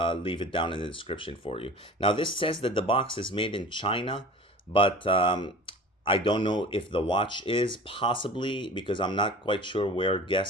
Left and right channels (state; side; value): normal; both; correlation 0.40